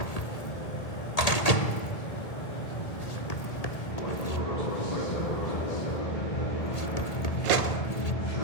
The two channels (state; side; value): late; right; 1.8 ms